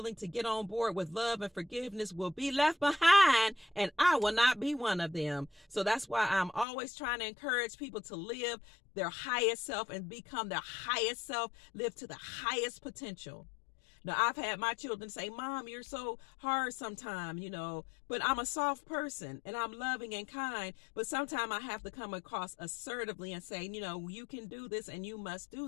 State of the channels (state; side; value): drops out; right; at 6.7 s